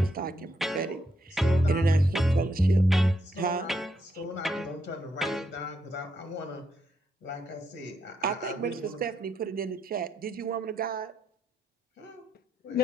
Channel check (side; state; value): both; normal; correlation 0.79